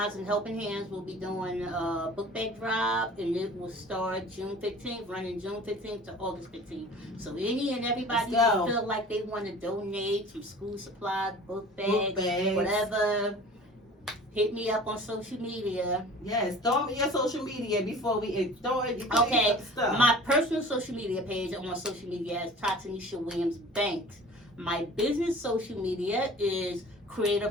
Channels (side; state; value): both; normal; correlation 0.44